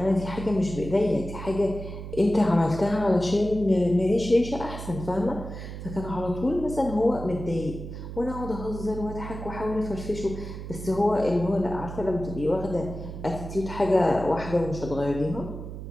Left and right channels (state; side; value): noise; right; hum, 9 dB below the sound